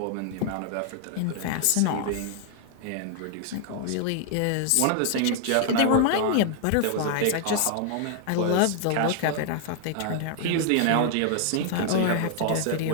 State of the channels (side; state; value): both; different; correlation 0.00